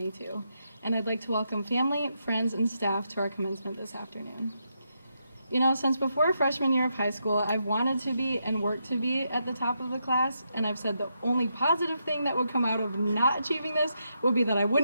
and I'd like to welcome family, friends, and staff to our commencement this afternoon. You know, since before freshman year of high school, I've wanted to be and worked to be at the top of the class, and I've said the only positive thing that would come out of not achieving this would be that I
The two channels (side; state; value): both; inverted; correlation -0.82